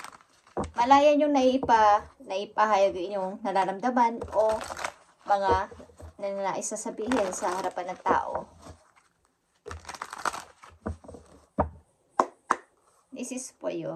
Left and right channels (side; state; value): both; identical; correlation 1.00